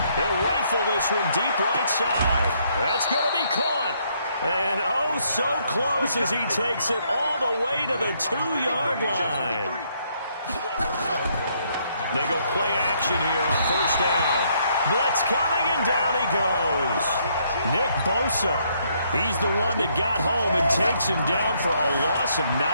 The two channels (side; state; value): both; inverted; correlation -0.71